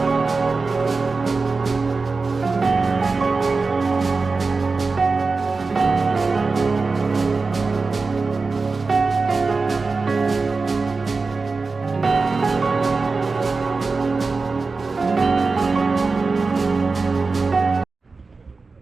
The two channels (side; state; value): left; quieter; 4.1 dB